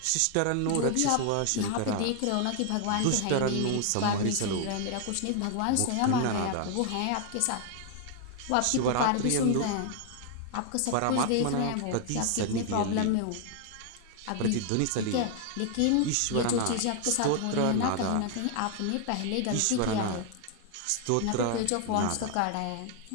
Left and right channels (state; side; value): different; both; correlation 0.00